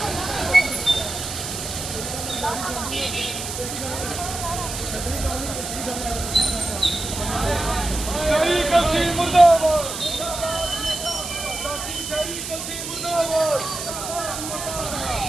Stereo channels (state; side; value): noise; right; hiss, 6 dB below the sound